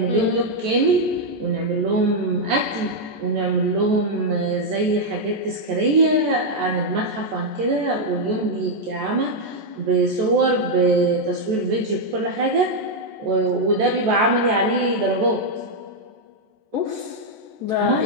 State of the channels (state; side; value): late; left; 14 ms